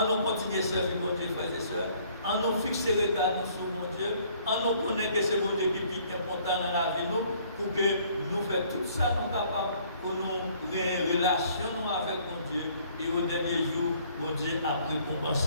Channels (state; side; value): inverted; both; correlation -0.60